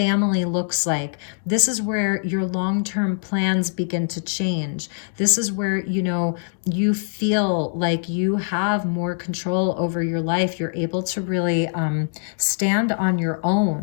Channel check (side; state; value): right; silent; digital silence